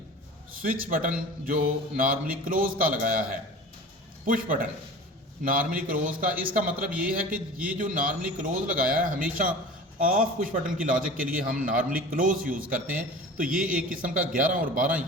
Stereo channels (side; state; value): both; normal; correlation 0.38